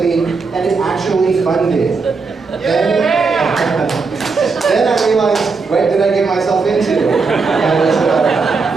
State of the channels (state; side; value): quieter; left; 4.5 dB